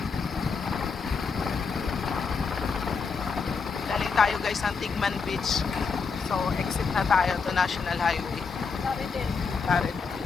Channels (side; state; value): right; quieter; 5.2 dB